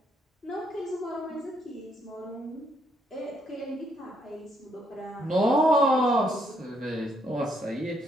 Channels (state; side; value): normal; both; correlation 0.73